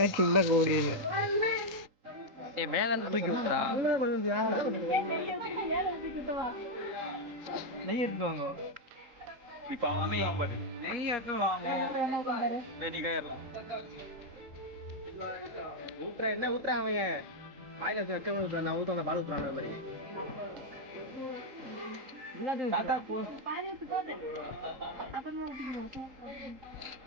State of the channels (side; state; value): left; late; 3.8 ms